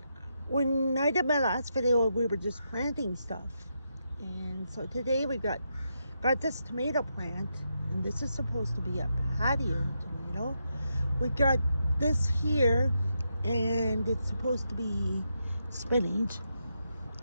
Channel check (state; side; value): inverted; both; correlation -0.83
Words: when I did my last video, we were just planting stuff, and so today we got this tomato plant, and this is supposed to be a patio tomato. We got this here, and it's supposed to be spinach.